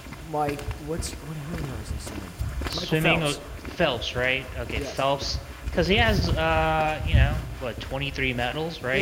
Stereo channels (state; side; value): identical; both; correlation 1.00